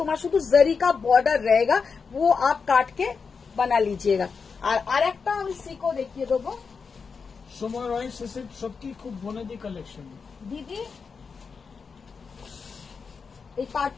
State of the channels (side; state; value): right; quieter; 5.3 dB